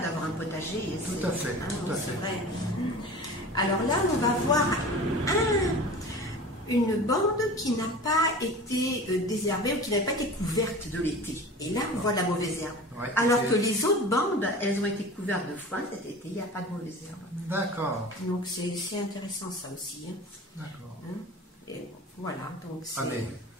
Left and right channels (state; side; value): normal; both; correlation 0.37